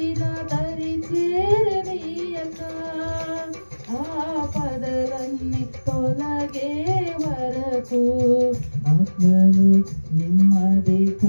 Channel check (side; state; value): both; inverted; correlation -1.00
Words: దరి చేరనీయక, ఆపదలన్నీ తొలగే వరకు, ఆత్మలు నెమ్మది